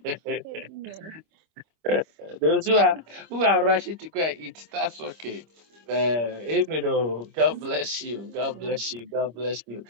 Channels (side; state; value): left; late; 25 ms